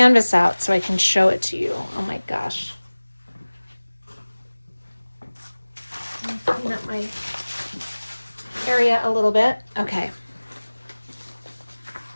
out so I can show it to you. Oh my gosh. Clean up my area a little bit. Okay.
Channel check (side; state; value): both; inverted; correlation -1.00